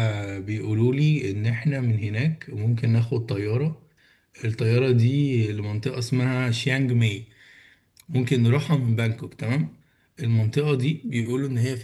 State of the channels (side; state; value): both; identical; correlation 1.00